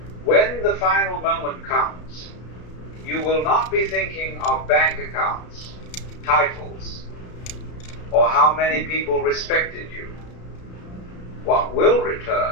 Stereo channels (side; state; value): right; late; 33 ms